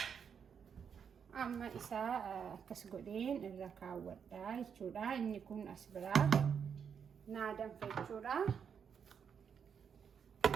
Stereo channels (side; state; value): left; quieter; 7.1 dB